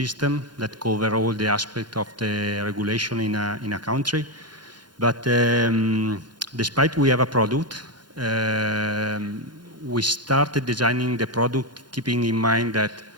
that covers all the aspects of the regulation in a country. But despite we have a product, we started designing the product keeping in mind that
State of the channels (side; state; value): left; late; 0.71 ms